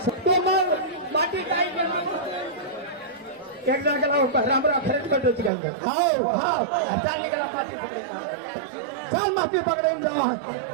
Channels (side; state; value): left; drops out; at 5.5 s